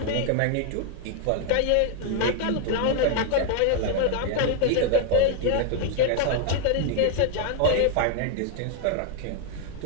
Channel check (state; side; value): different; both; correlation 0.00